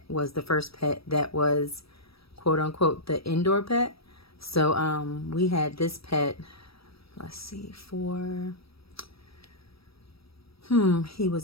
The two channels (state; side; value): late; right; 0.76 ms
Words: was the first pet that was quote unquote the indoor pet. So we had this pet, let's see, he was